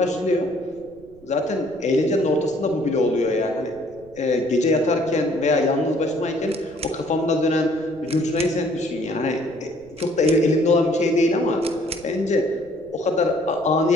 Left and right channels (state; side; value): noise; right; rumble, 25 dB below the sound